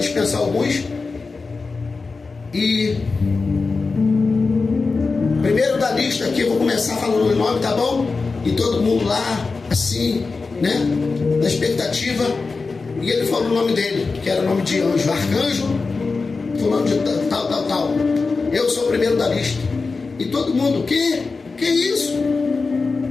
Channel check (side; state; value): right; quieter; 4.2 dB